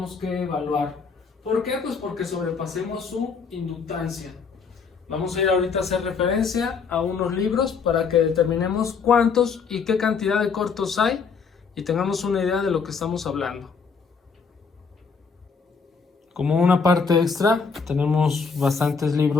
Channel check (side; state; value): right; quieter; 5.5 dB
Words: que evaluar. ¿Por qué? Pues porque sobrepasemos su inductancia. Vamos a ir ahorita a hacer referencia a unos libros para que determinemos cuántos y qué cantidad de cortos hay y tengamos una idea de lo que estamos hablando. Como una parte extra, tenemos bastantes